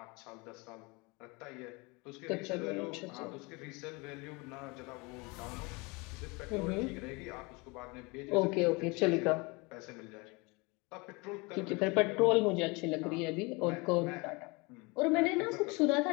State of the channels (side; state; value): right; quieter; 27.0 dB